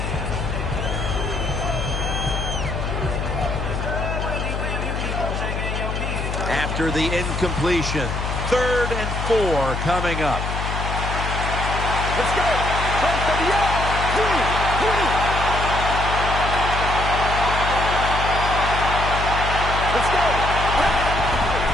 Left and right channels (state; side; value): noise; left; hum, 3 dB below the sound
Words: After the incompletion, 3rd and 4 coming up. Let's go. Let's go.